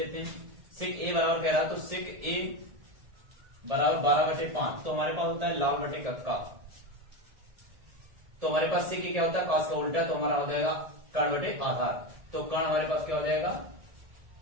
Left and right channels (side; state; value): left; late; 1.7 ms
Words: हैं। sec a बराबर कह रहा, तो sec a बराबर 12/5। तो हमारे पास होता है लाल बटे कक्का। तो हमारे पास सेक क्या होता है, कॉस का उल्टा, तो हमारा हो जाएगा कर्ण बटे आधार। तो कर्ण हमारे पास क्या हो जाएगा,